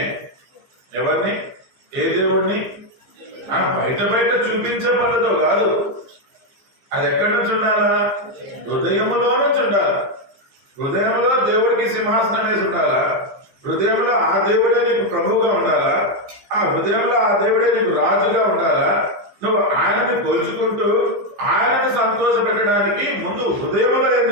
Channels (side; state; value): left; late; 15 ms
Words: ఎవరిని? ఏ దేవుణ్ణి? బయట చూపించే పనితో కాదు. అది ఎక్కడి నుంచి ఉండాలా? హృదయములో నుంచి ఉండాలా. హృదయంలో దేవుడికి సింహాసనం వేసి ఉండాలా. హృదయంలో ఆ దేవుడే నీకు ప్రభువుగా ఉండాలా. ఆ హృదయంలో ఆ దేవుడే నీకు రాజుగా ఉండాలా. నువ్వు ఆయనని కొలుచుకుంటూ ఆయనని సంతోష పెట్టడానికి ముందు హృదయంలో ఏం